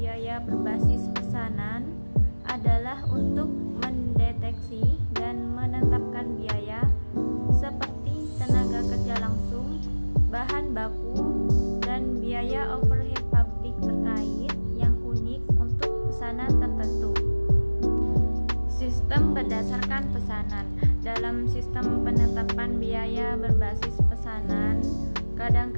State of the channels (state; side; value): inverted; both; correlation -1.00